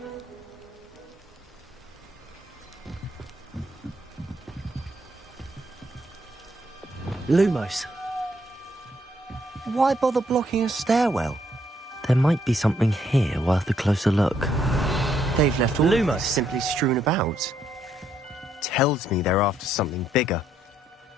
Lumos. Why bother blocking a stairwell? There might be something here worth a closer look. They've left all Lumos simply strewn about. Tells me they're after something bigger.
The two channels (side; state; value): both; normal; correlation 0.72